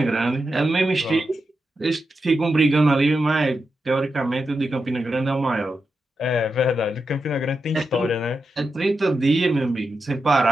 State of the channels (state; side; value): normal; both; correlation 0.88